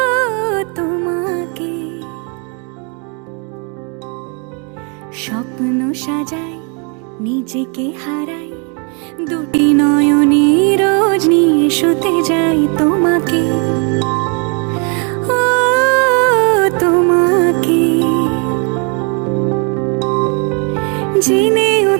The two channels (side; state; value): left; quieter; 35.6 dB